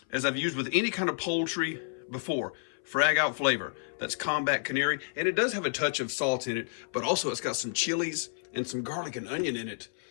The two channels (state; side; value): silent; right; 58 dB below the other